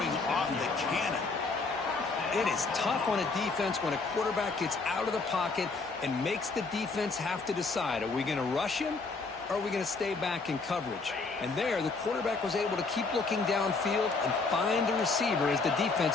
off the cannon. It is tough on a defense when a quarterback gets out of the pocket and makes the defense have to decide, are we going to rush him or are we going to stay back in coverage? And there, the quarterback was able to keep looking downfield and find the receiver as the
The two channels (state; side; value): quieter; right; 4.1 dB